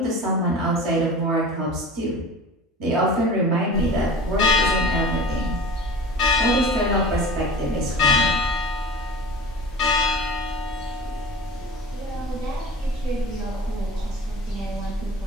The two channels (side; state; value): both; normal; correlation 0.37